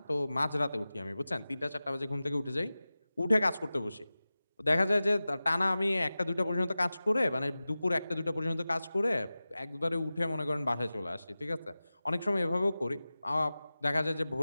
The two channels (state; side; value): inverted; both; correlation -0.96